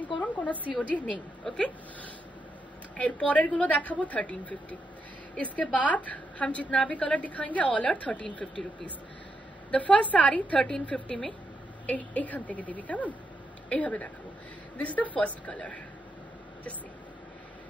করুন, কোনো সিওডি নেই। ওকে, এর পরের গুলো দেখাবো 1350। इसके बाद हम जितना भी कलर दिखाएंगे all are 1350 rupees. The first sari 1350 में এইখান থেকে দিবি, কেমন এইভাবে দেখাবো। This is the first colour. Just see,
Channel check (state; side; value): normal; both; correlation 0.82